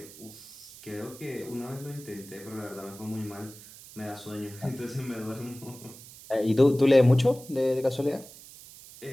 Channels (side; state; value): right; noise; hiss, 18 dB below the sound